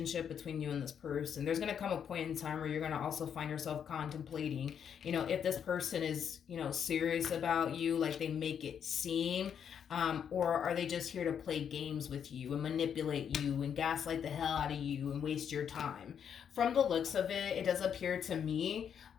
between you and this person. There's going to come a point in time where you're going to also find yourself contemplating, if this person is, serious about you, like they make it seem, or are they just here to play games with you and manipulate you and gaslight the hell out of you and waste your time. From the looks of it, it does appear to me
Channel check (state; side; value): quieter; right; 8.1 dB